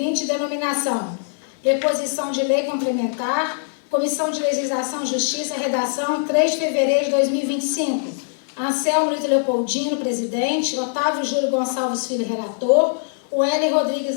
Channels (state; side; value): silent; right; digital silence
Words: denominação: Preposição de lei complementar, Comissão de Legislação e Justiça, redação 3 de fevereiro de 2025. Anselmo Ito Leopoldino, presidente. Otávio Júlio Gonçalves Filho, relator. O Hélio Rodrigues